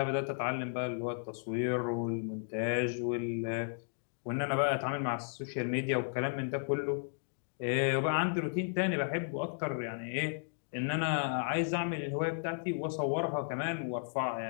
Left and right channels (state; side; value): silent; right; digital silence